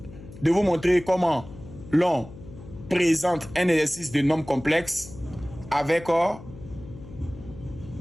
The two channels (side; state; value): left; noise; hum, 16 dB below the sound